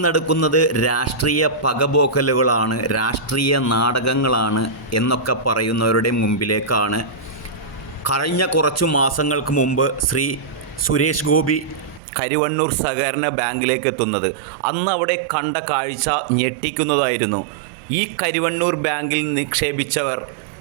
നടക്കുന്നത് രാഷ്ട്രീയ പകപോക്കലുകളാണ്, രാഷ്ട്രീയ നാടകങ്ങളാണ് എന്നൊക്കെ പറയുന്നവരുടെ മുമ്പിലേക്കാണ് കഴിഞ്ഞ കുറച്ചു മാസങ്ങൾക്ക് മുമ്പ് ശ്രീ സുരേഷ് ഗോപി കരുവന്നൂർ സഹകരണ ബാങ്കിലേക്ക് എത്തുന്നത്. അന്ന് അവിടെ കണ്ട കാഴ്ച ഞെട്ടിക്കുന്നതായിരുന്നു. ഈ കരുവന്നൂർ ബാങ്കിൽ നിക്ഷേപിച്ചവർ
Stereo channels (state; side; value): drops out; left; at 12.0 s